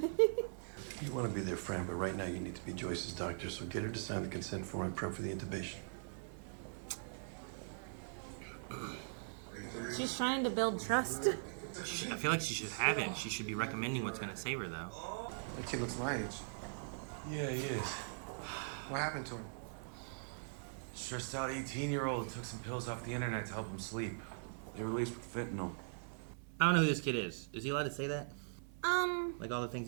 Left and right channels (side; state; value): left; silent; 50 dB below the other